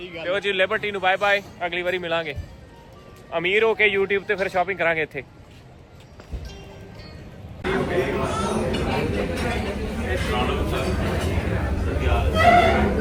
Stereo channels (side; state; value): both; identical; correlation 1.00